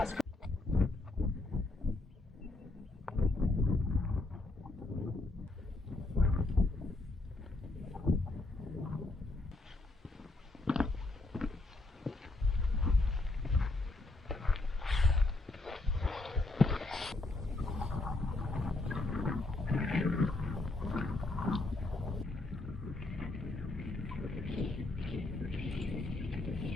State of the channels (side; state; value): right; quieter; 3.0 dB